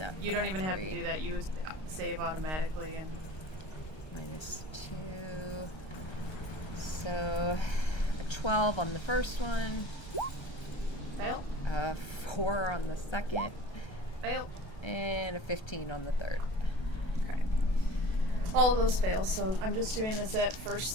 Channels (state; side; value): late; right; 1.3 ms